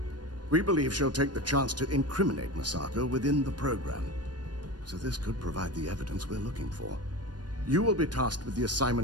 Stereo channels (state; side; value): late; left; 0.69 ms